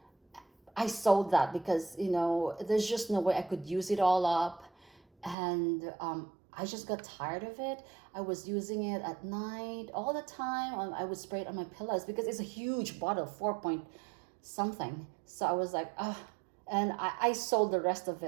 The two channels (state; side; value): drops out; left; at 5.4 s